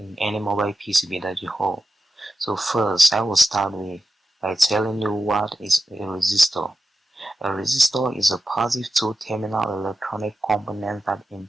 any mobile PCB that you hold. So first, I will start by telling you what is a resistor. A resistor is a positive two-terminal electronic component that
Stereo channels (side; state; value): both; normal; correlation 0.90